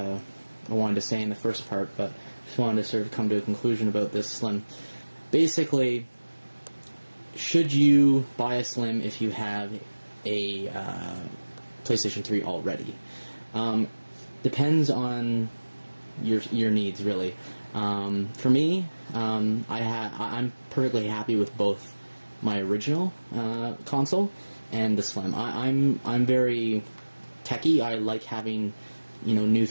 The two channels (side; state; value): both; inverted; correlation -1.00